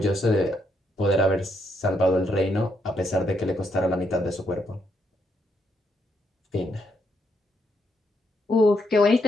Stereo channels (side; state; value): both; normal; correlation 0.77